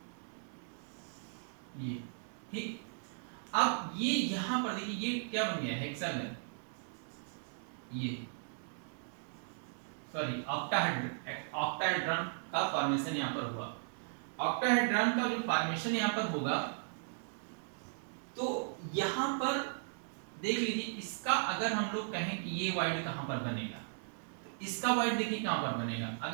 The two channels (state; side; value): silent; left; digital silence